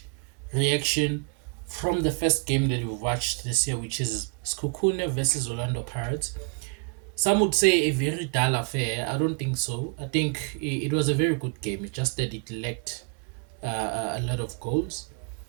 reaction from the first game that we've watched this year, which is Skukune versus Orlando Pirates. Some would say a very dull affair. I don't think so. I think it was a very good game. It's just that it lacked a lot of goals.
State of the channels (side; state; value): left; quieter; 35.2 dB